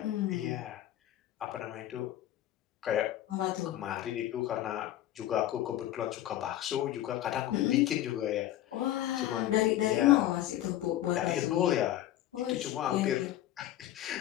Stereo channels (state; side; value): quieter; right; 13.2 dB